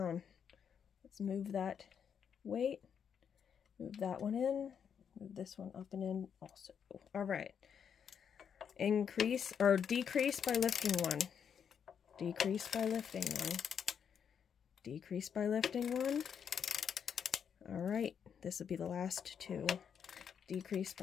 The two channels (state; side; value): quieter; right; 7.6 dB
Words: Let's move that weight. Move that one in. Move this one up and in also. All right. Increase or decrease by lifting 1. Decrease by lifting 1. Decrease by lifting 1. All right. This will be the last 2. Decrease